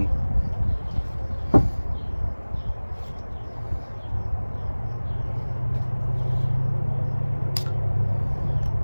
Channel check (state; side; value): inverted; both; correlation -1.00